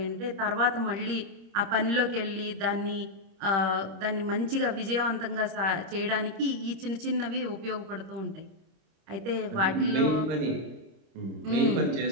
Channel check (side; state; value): left; late; 26 ms